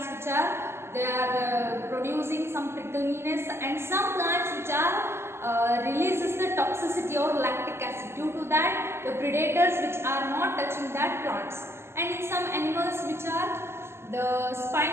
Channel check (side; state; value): left; late; 0.12 ms